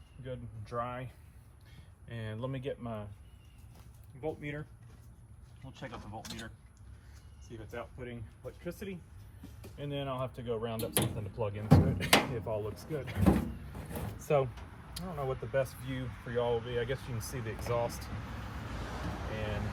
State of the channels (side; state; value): both; identical; correlation 1.00